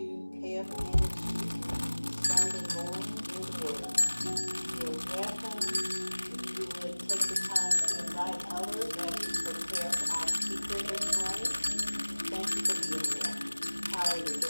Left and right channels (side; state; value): both; inverted; correlation -1.00